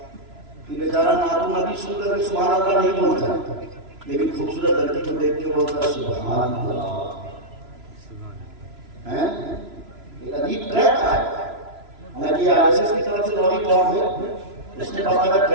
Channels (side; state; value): left; late; 3.0 ms